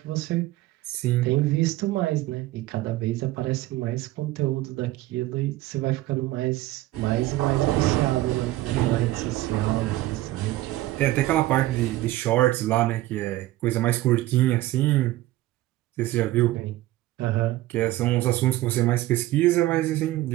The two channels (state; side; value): quieter; left; 16.7 dB